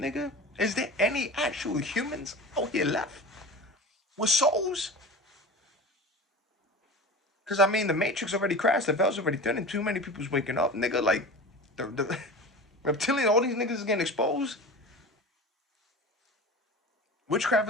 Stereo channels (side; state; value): both; normal; correlation 0.34